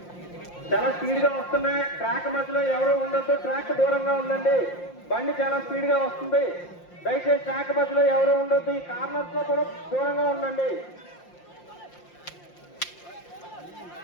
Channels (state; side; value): late; right; 5.7 ms